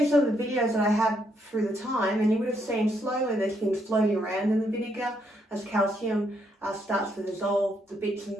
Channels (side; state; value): both; normal; correlation 0.75